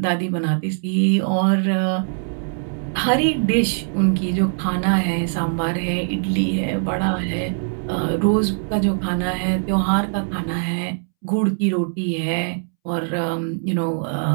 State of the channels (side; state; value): left; silent; 65 dB below the other